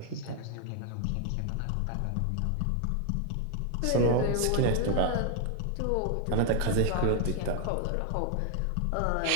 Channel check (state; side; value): different; both; correlation 0.00